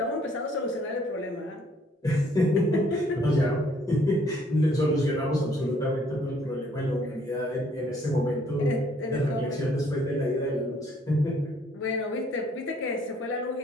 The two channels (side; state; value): both; normal; correlation 0.63